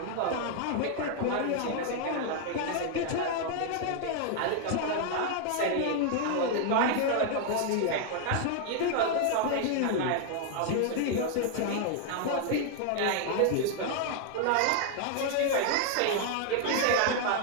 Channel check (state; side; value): different; both; correlation 0.00